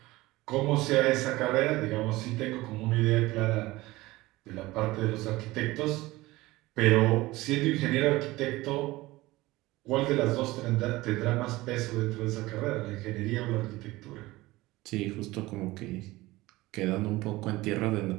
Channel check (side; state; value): left; quieter; 19.3 dB